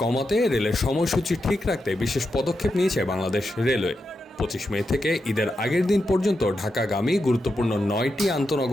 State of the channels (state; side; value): normal; both; correlation 0.87